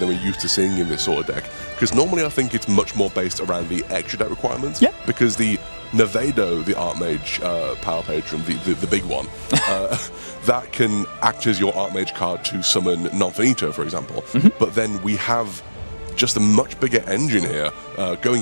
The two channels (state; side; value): inverted; both; correlation -1.00